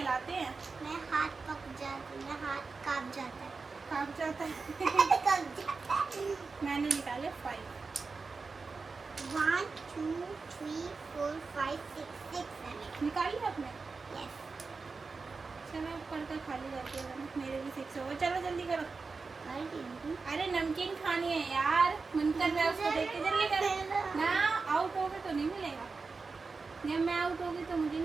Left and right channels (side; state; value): left; quieter; 4.4 dB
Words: हैं। मैं हाथ पक जाती, मैं हाथ कांप जाता है। कांप जाता है। कांप जाता है। मैंने निकाले 5। 1 2 3 4 5 6 7 निकाली आपने? यस चलो ऊपर का खाली जाती है, मेरे भी 6 हो गए। चलो जल्दी करो। अरे नमकीन खानी है यार, मन कर रहा है उसको देख के, जल्दी करो ना। आउट हो गए तो नहीं मिलेगा, जब मैं आउट हो गई तो मुझे